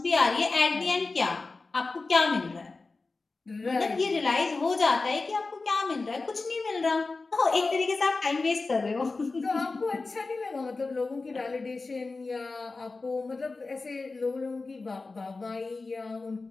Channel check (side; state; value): right; quieter; 3.7 dB